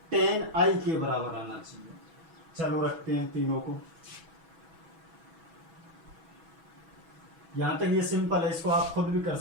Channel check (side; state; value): left; late; 6.2 ms